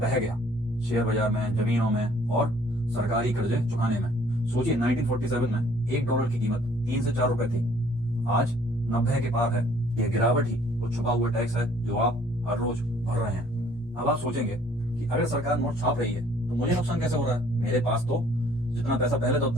गया शेयर बाजार में, जमीनों में और सरकारी कर्जे चुकाने में। सोचिए, 1947 में $1 की कीमत 3 से 4 रुपए थी, आज 90 के पार है। यह गिरावट ही वो छुपा हुआ टैक्स है जो आप हर रोज भर रहे हैं। अब आप सोचेंगे कि अगर सरकार नोट छाप रही है तो मुझे नुकसान कैसे हो रहा है? मेरे पास तो जितना पैसा पहले था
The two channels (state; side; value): normal; both; correlation 0.59